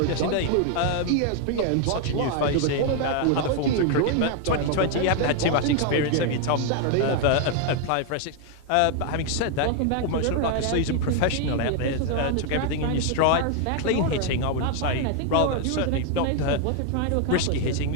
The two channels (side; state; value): both; different; correlation 0.00